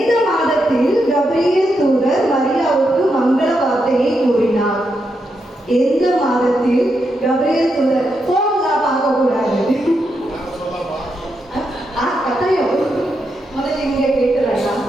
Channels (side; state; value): both; normal; correlation 0.83